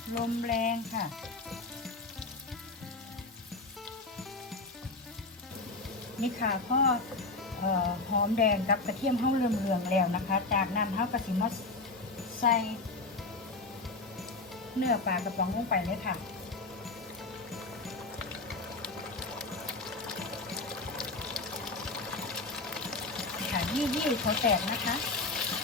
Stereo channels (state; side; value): quieter; right; 3.4 dB